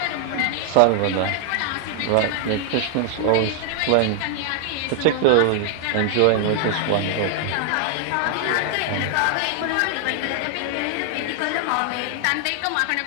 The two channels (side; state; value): both; different; correlation 0.00